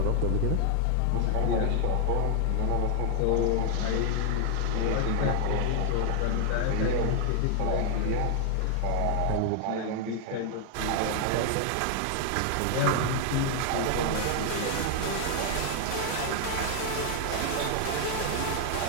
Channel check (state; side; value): different; both; correlation 0.00